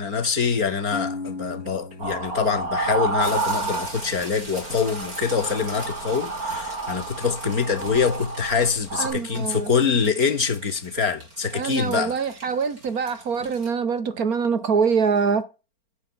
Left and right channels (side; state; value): left; late; 4.4 ms